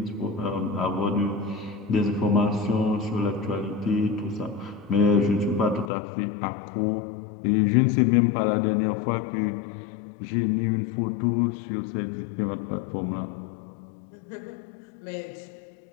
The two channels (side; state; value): right; drops out; at 5.9 s